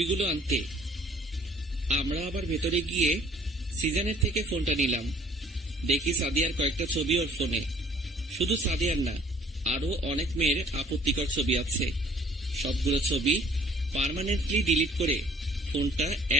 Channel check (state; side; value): normal; both; correlation 0.56